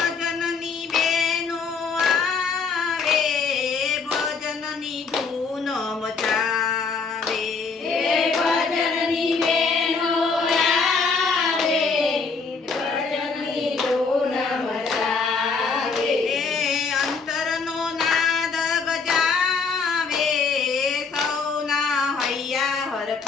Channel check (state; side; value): quieter; right; 4.9 dB